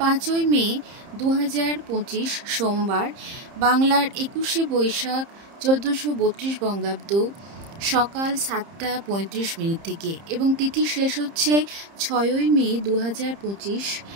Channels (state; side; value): late; left; 30 ms